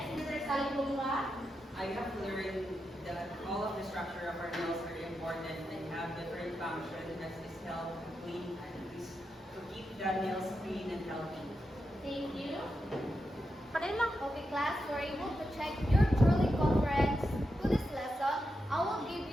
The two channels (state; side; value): normal; both; correlation 0.87